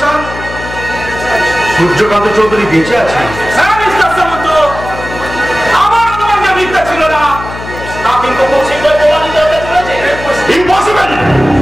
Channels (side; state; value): left; noise; hum, 11 dB below the sound